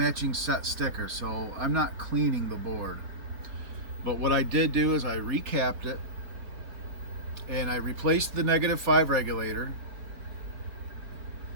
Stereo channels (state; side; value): late; left; 4.5 ms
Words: set sticker, so I'm not cleaning the board. But what I did do is I recapped it, and I replaced the -5 regulator,